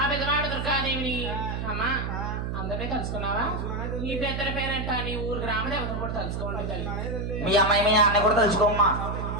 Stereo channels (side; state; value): right; noise; hum, 3 dB below the sound